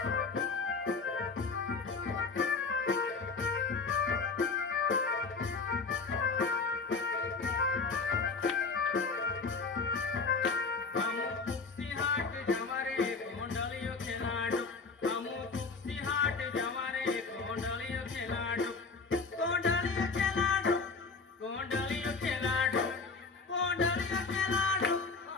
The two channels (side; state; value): right; quieter; 4.5 dB